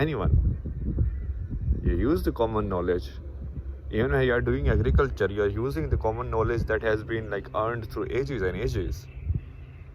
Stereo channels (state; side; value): identical; both; correlation 1.00